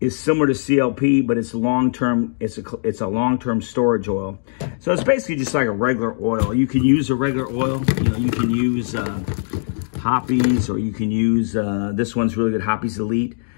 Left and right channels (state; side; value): silent; right; digital silence